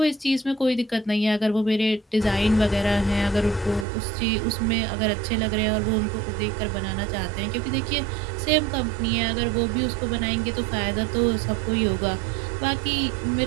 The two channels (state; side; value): drops out; left; at 3.9 s